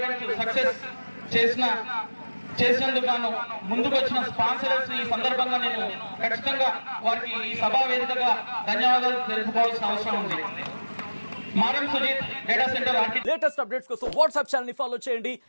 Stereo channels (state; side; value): inverted; both; correlation -1.00